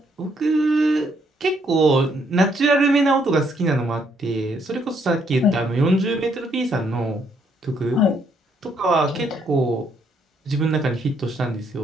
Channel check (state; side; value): normal; both; correlation 0.71